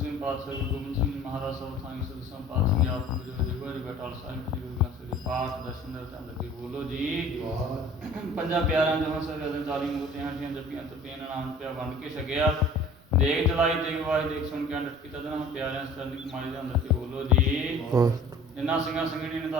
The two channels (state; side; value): noise; right; rumble, 28 dB below the sound